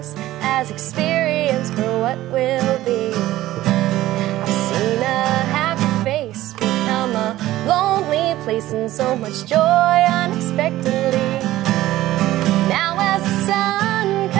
as experience for what will be. I've seen a happy face become a lonely place and so much joy unexpectedly. Now as the sun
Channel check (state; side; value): quieter; left; 15.4 dB